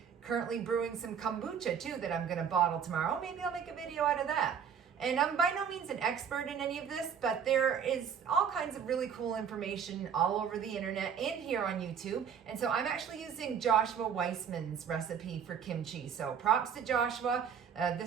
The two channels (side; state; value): left; quieter; 7.5 dB